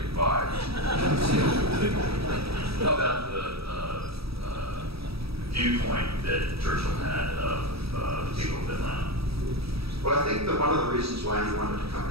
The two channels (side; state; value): left; late; 0.77 ms